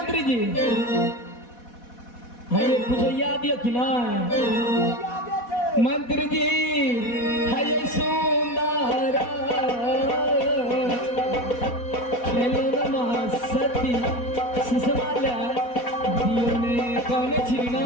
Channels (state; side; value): late; right; 4.1 ms